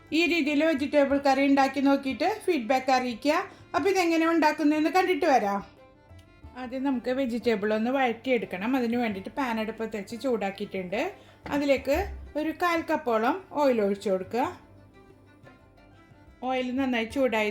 ഈ രീതിയിൽ വെജിറ്റബിൾ കറി ഉണ്ടാക്കി നോക്കിയിട്ട് ഫീഡ്ബാക്ക് അറിയിക്കുക. അപ്പോൾ ഇതെങ്ങനെ ഉണ്ടാക്കുന്നതെന്ന് കണ്ടിട്ട് വരാം. ആദ്യം നമുക്ക് വെജിറ്റബിൾ ഒന്ന് വഴറ്റിയെടുക്കണം. അതിന് വേണ്ടിയിട്ട് പാൻ അടുപ്പത്ത് വെച്ച് ചൂടാക്കിയിട്ടുണ്ട്. അതിലേക്ക് ഒരു 1/4 കപ്പോളം ഓയിൽ ഒഴിച്ചു കൊടുക്കുക. ഓയിൽ നന്നായി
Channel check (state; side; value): identical; both; correlation 1.00